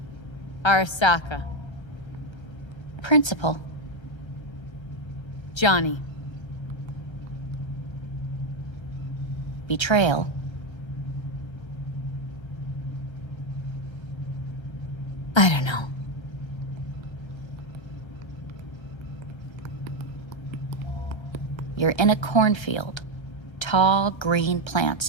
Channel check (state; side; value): late; right; 1.3 ms